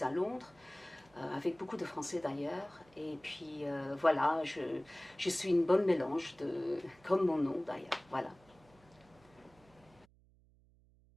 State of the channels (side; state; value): right; noise; hum, 29 dB below the sound